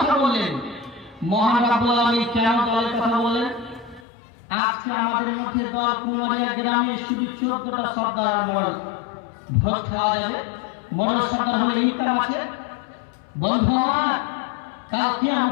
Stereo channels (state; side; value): drops out; right; at 4.0 s